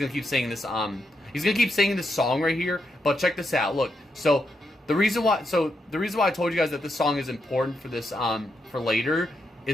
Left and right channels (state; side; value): normal; both; correlation 0.83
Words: keep saying this. He's gonna keep singing this song right here. But check this out. Look. So the reason why I told you guys that this song is important for this for later